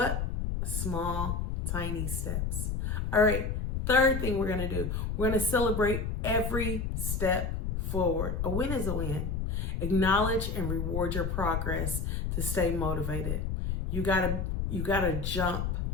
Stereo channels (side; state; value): left; noise; rumble, 1 dB below the sound